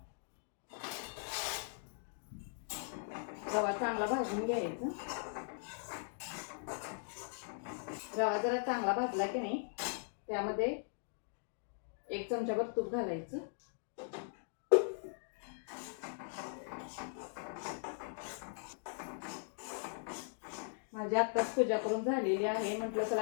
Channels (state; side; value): silent; right; digital silence